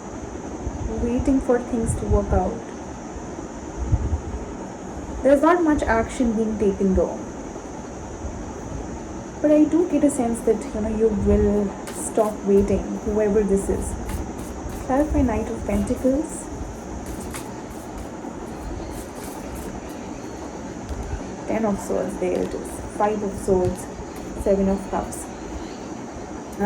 Waiting for things to work out. There's not much action being taken though. But I do get a sense that you will stop waiting, whoever this is. Clarify Knight of Pentacles. Ten of Swords, there it is. Five of Swords, Seven of Cups.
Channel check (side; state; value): both; identical; correlation 1.00